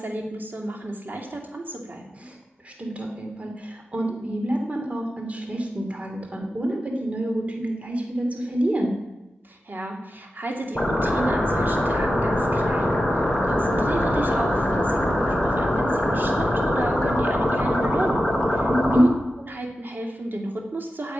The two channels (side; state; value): both; normal; correlation 0.91